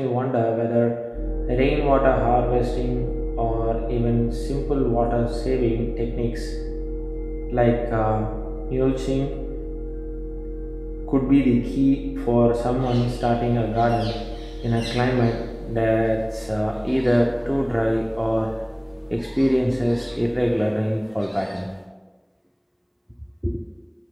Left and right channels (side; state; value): both; identical; correlation 1.00